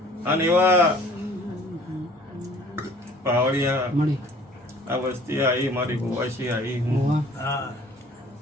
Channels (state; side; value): normal; both; correlation 0.52